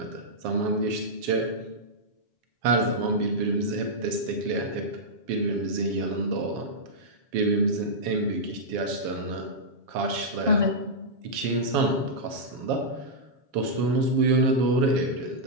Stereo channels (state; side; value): late; left; 7.3 ms